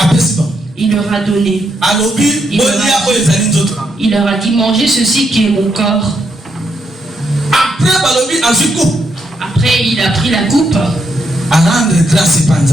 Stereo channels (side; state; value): both; normal; correlation 0.78